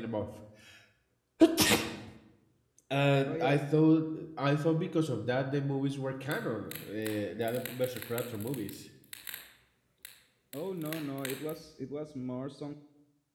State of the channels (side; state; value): both; identical; correlation 1.00